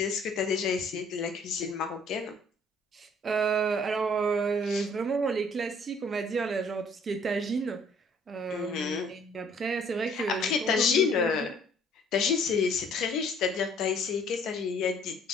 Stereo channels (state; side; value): normal; both; correlation 0.58